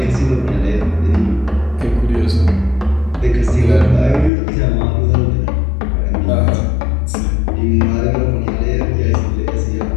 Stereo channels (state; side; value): drops out; right; at 4.3 s